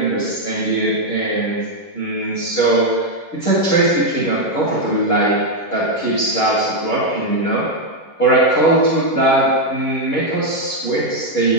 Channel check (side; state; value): right; late; 11 ms